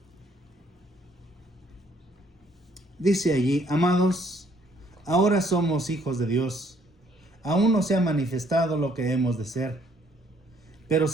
Dice allí: amados, ahora somos hijos de Dios. Aún no se ha manifestado lo que hemos de ser. Pero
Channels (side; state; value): both; normal; correlation 0.65